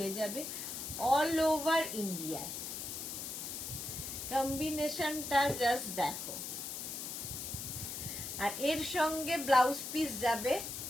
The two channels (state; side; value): noise; left; hiss, 6 dB below the sound